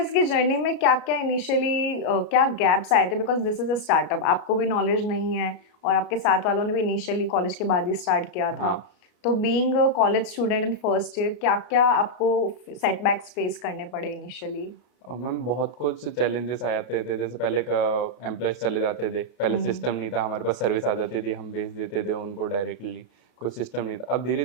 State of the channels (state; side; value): late; right; 33 ms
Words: की जर्नी में क्या क्या इनिशियली क्या गैप्स आए थे? Because this is a startup, आपको भी नॉलेज नहीं है और आपके साथ वालों ने भी इनिशियली कॉलेज के बाद ही स्टार्ट किया था। तो being a college student in first year, क्या-क्या आपको सेटबैक्स फेस करने पड़े इनिशियली? और मैम बहुत कुछ चैलेंजेस आ जाते थे, जैसे पहले का एम्प्लॉयज़ चले जाते थे, पहले हुँ, सिस्टम नहीं था, हमारे पास सर्विस आ जाती थी, हम भेज देते थे उनको डायरेक्टली, कोई सिस्टम नहीं था। अब